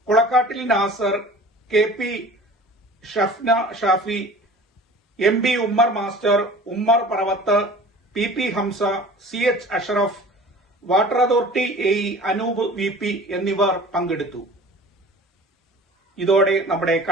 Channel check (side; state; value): both; normal; correlation 0.43